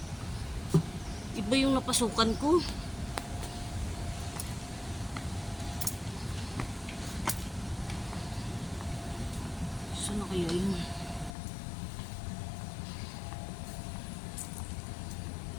iba yung napasukan ko. Saan na kaya yun?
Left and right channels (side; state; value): right; drops out; at 11.3 s